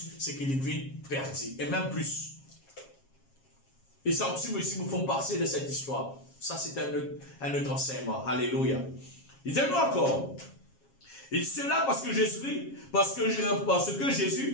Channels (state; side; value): late; right; 7.4 ms